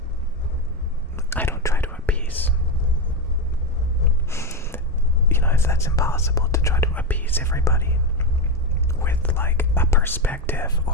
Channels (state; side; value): normal; both; correlation 0.12